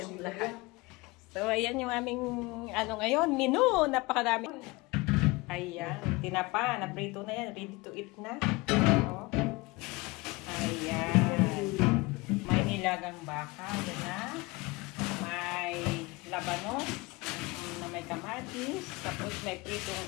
lahat? So ayan yung aming ngayon, menu, napakarami. Ayan, tinapa, naprito na yan, ready to eat na. So, ayan, may nilagang baka, yan na. May labanos na may kamatis, tapos may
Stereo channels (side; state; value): right; quieter; 23.6 dB